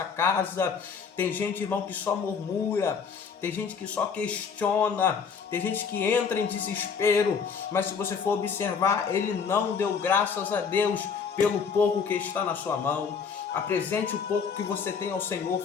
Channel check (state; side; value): quieter; right; 6.1 dB